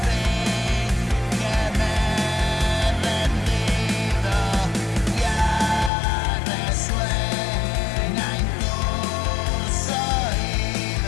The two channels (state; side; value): drops out; right; at 5.9 s